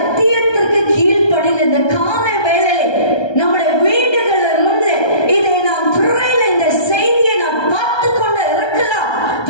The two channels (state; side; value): late; right; 1.2 ms